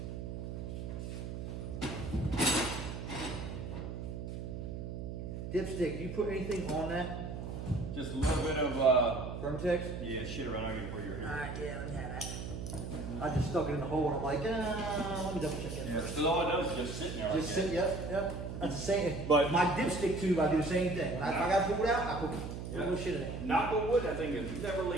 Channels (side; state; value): right; noise; hum, 6 dB below the sound